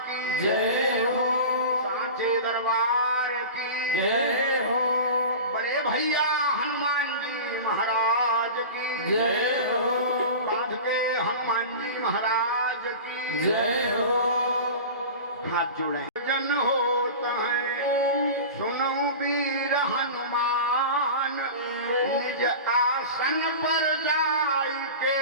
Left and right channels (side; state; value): both; inverted; correlation -0.32